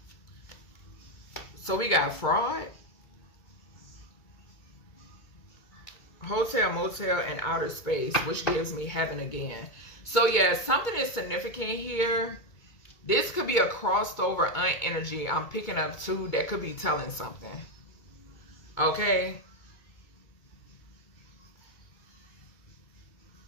So we got fraud, hotel, motel, and outer space, which gives me heaven again. So yeah, something is significant here. This could be a crossed over aunt energy I'm picking up too that could be telling something. Okay.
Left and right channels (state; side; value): late; right; 2.2 ms